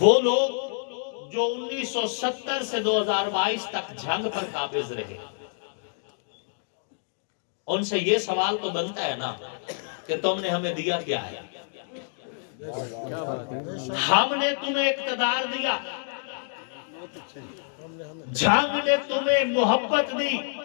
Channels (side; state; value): right; silent; digital silence